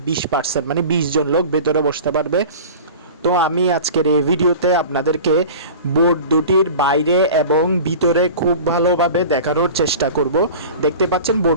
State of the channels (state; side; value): inverted; both; correlation -0.37